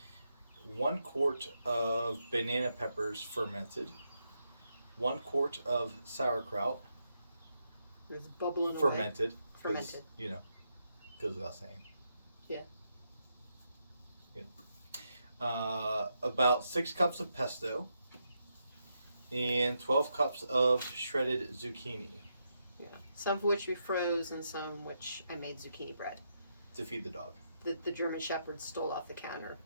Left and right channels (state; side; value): inverted; both; correlation -0.82